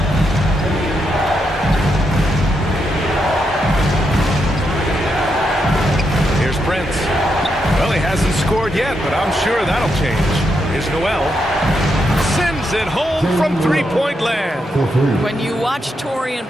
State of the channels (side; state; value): both; normal; correlation 0.82